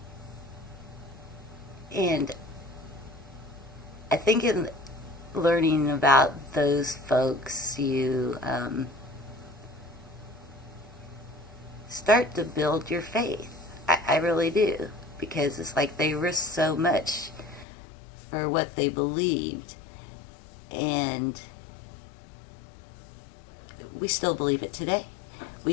And I think in learning about those folks, you start to build your faith. I really do. Because it's like they risked so much for what they believed. And we still believe it today. We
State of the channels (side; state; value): right; drops out; at 17.7 s